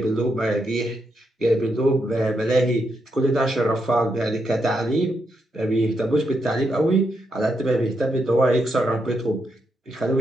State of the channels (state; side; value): normal; both; correlation 0.81